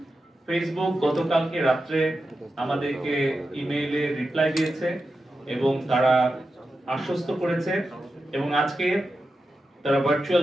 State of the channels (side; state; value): both; normal; correlation 0.90